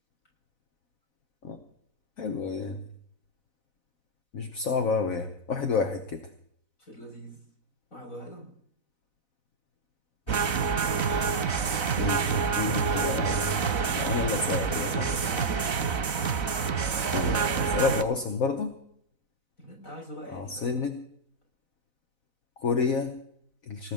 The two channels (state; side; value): late; right; 4.0 ms